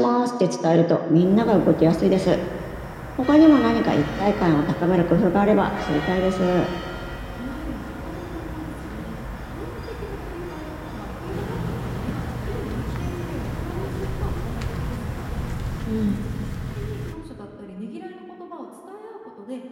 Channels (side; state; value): both; identical; correlation 1.00